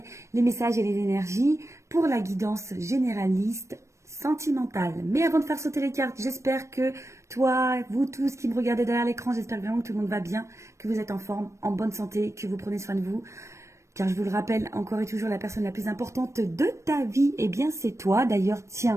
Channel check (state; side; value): late; left; 0.14 ms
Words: les messages et les énergies pour la guidance généraliste sentimentale. Mais avant de faire sauter les cartes, j'espère que toi, vous tous qui me regardez derrière l'écran, j'espère vraiment que tout le monde va bien, que vous êtes en forme, en bonne santé, que vous prenez soin de vous. Car je vous le rappelle, encore et toujours, la personne la plus importante de ta vie, eh bien c'est toi. D'ailleurs,